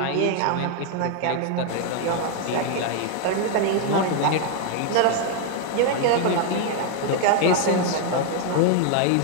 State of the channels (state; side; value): different; both; correlation 0.00